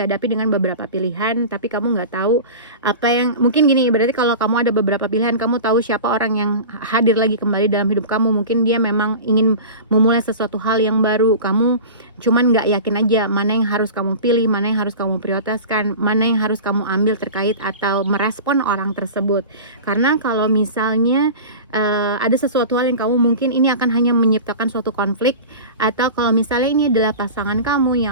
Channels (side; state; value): both; inverted; correlation -0.33